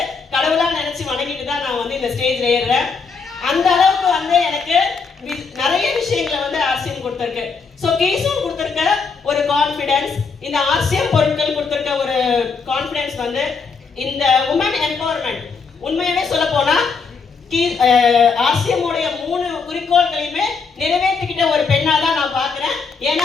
கடவுளாக நினைச்சு வணங்கிட்டு தான் நான் வந்து இந்த ஸ்டேஜ்ல ஏறுறேன். அந்த அளவுக்கு வந்து எனக்கு நிறைய விஷயங்களை வந்து ஆர்சிஎம் கொடுத்துருக்கு. ஸோ கீசோன் கொடுத்துருக்க ஒரு கான்ஃபிடன்ஸ், இந்த ஆர்சிஎம் பொருட்கள் கொடுத்துருக்க ஒரு கான்ஃபிடன்ஸ் வந்து இந்த உமன் எம்பவர்மெண்ட். உண்மையாவே சொல்ல போனா ஆர்சிஎம் உடைய 3 குறிக்கோள்களையுமே நிறைவேற்றிக்கிட்ட ஒரு பெண்ணா தான் நான் பார்க்கிறேன். ஏன்னா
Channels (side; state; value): right; quieter; 5.1 dB